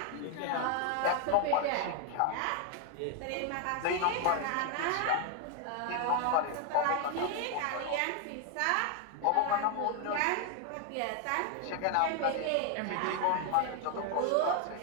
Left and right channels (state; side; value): different; both; correlation 0.01